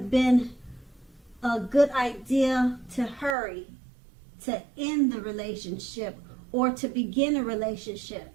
been a good idea to hurry to end the relationship or to begin a relationship.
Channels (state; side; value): drops out; left; at 3.4 s